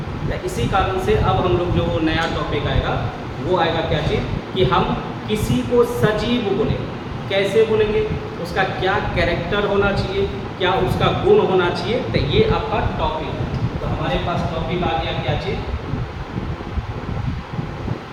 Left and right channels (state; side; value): identical; both; correlation 1.00